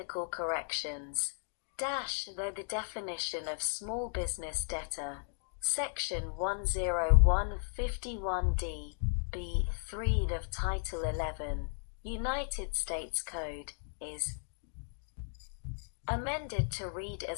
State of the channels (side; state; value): right; silent; digital silence